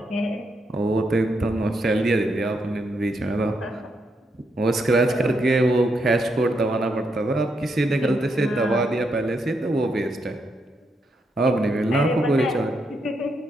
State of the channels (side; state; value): both; normal; correlation 0.80